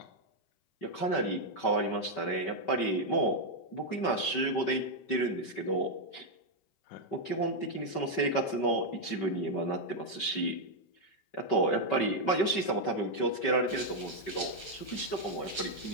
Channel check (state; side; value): late; right; 5.2 ms